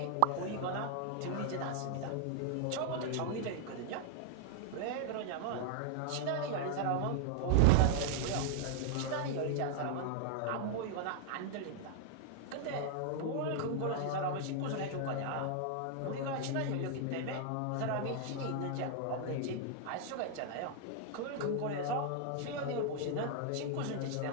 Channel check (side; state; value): both; different; correlation 0.00